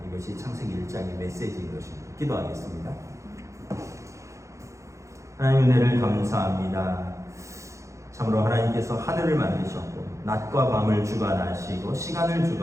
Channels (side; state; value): left; late; 0.15 ms